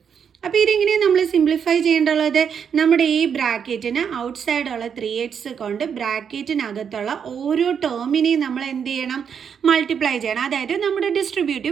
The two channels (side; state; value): left; quieter; 7.4 dB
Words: അപ്പോൾ ഇതെങ്ങനെയാണ് നമ്മൾ സിംപ്ലിഫൈ ചെയ്യേണ്ടുള്ളത്? നമ്മുടെ ഈ ബ്രാക്കറ്റിന് ഔട്ട് സൈഡുള്ള 3x കൊണ്ട് ബ്രാക്കറ്റിനകത്തുള്ള ഓരോ ടേമിനെയും നമ്മൾ എന്ത് ചെയ്യണം? മൾട്ടിപ്ലൈ ചെയ്യണം. അതായത് നമ്മുടെ